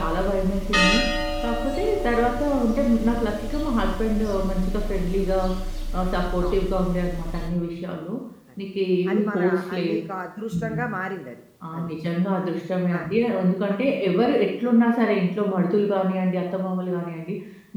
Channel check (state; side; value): identical; both; correlation 1.00